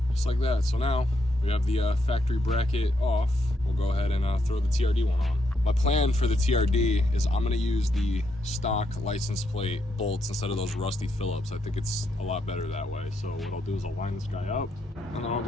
Just like that. So now we have the factory bracket off. We'll go ahead and throw the TRD one on. My plan for the TRD is I'm gonna use the stock license plate bolts instead of those rusty Phillips. I think it's a lot better that way. So what I'll do is I'll line this guy up and then I'll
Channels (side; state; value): both; normal; correlation 0.79